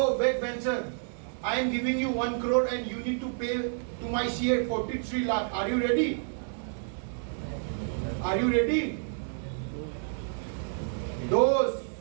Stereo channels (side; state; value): left; silent; digital silence